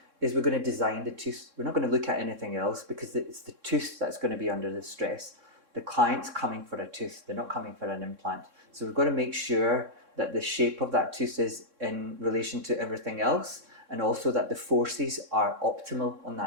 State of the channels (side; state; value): left; late; 3.6 ms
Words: is we're going to design the tooth. We're not going to look at anything else because it's the tooth that's going to be under the stress. The client's coming for a tooth, they're not coming for an implant. So we've got to make sure that the shape of that tooth is in relation to everything else, and also that the forces are optimal on